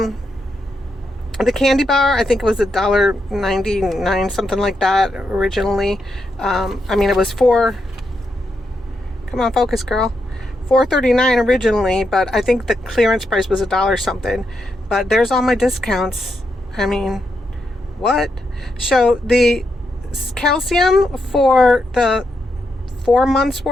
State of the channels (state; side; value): normal; both; correlation 0.82